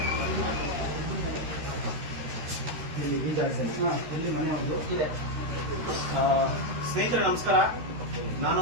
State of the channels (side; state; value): left; late; 13 ms